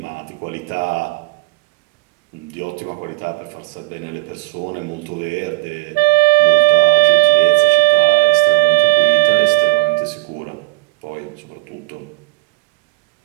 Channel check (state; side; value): quieter; left; 22.7 dB